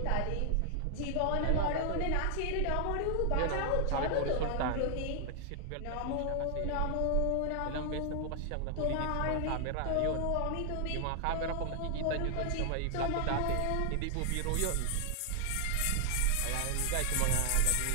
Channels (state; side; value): different; both; correlation 0.00